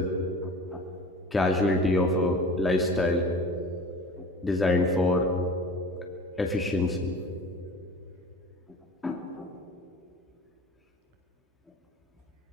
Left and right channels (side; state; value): both; normal; correlation 0.39